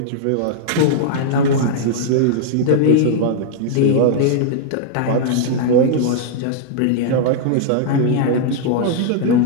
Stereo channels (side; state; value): both; different; correlation -0.01